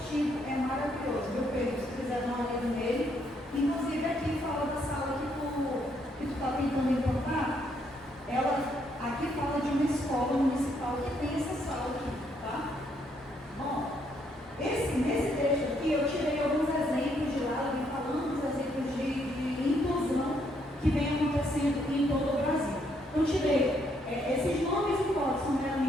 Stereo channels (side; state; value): both; normal; correlation 0.73